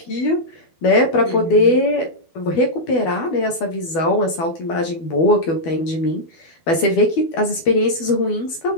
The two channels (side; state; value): right; late; 12 ms